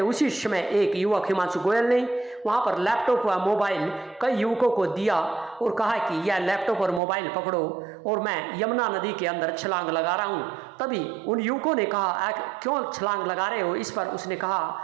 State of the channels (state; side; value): drops out; left; at 7.0 s